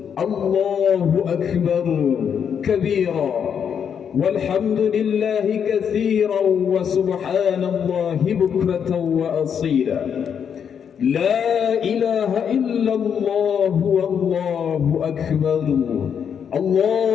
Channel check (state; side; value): quieter; right; 7.7 dB